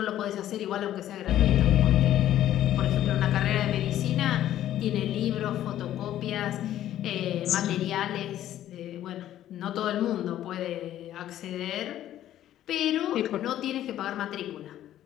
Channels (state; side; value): quieter; right; 12.3 dB